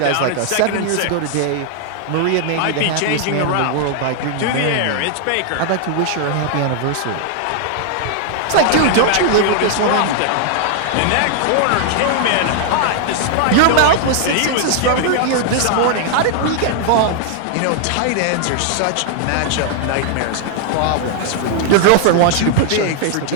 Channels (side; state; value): both; different; correlation 0.00